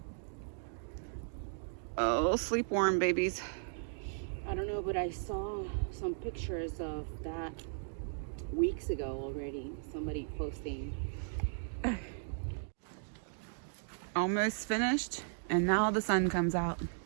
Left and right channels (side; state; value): left; silent; digital silence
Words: Oh, sleep warm babies. I don't know, but I saw some pictures of that weeks ago already. Somebody posting. Almost finished, and now the sun comes out.